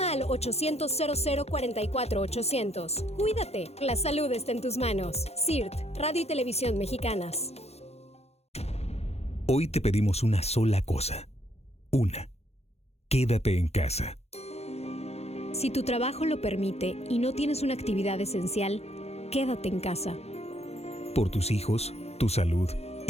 al 800-0044-800. Cuídate, la salud está en tus manos. CIRT, Radio y Televisión Mexicanas. Hoy te pedimos una sola cosa. Una. Quédate en casa. Si tu trabajo lo permite y no tienes una actividad esencial, quédate en casa. Por tus hijos, tu salud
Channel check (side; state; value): right; late; 0.31 ms